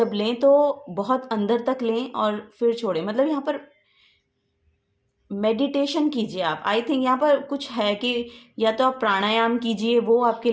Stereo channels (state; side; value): identical; both; correlation 1.00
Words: लें तो बहुत अंदर तक लें और फिर छोड़ें, मतलब यहाँ पर मेडिटेशन कीजिए आप। आई थिंक यहाँ पर कुछ है कि या तो आप प्राणायाम कीजिए, वो आपके